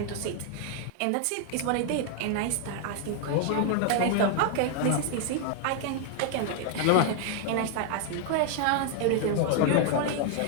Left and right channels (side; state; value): both; different; correlation 0.00